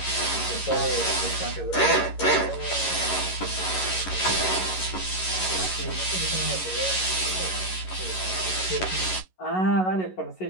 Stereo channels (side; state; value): right; late; 11 ms